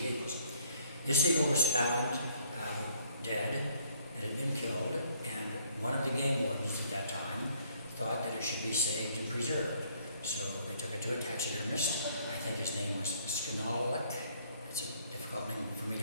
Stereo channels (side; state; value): both; inverted; correlation -0.64